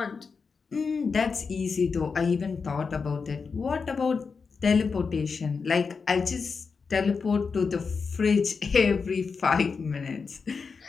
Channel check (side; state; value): right; quieter; 5.2 dB